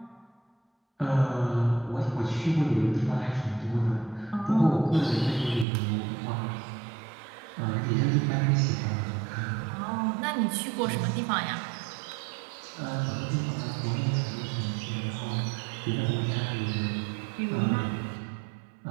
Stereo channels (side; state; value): left; drops out; at 5.7 s